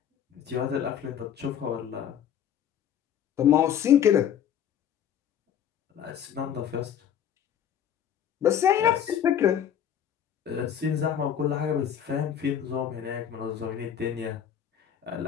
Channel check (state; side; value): quieter; right; 9.2 dB